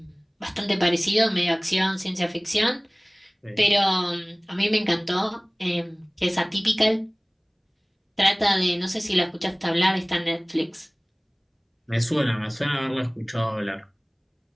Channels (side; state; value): both; identical; correlation 1.00